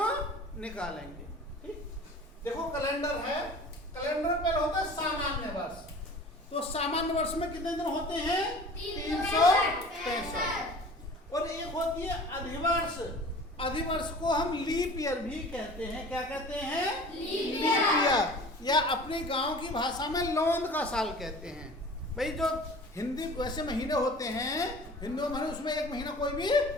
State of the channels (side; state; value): both; normal; correlation 0.43